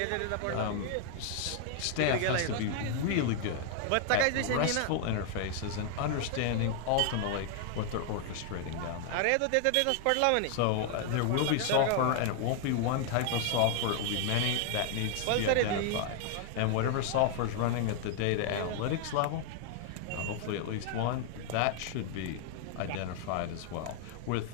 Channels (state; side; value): different; both; correlation 0.00